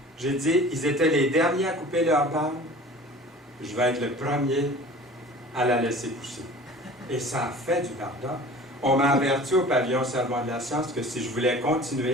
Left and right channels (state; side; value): normal; both; correlation 0.43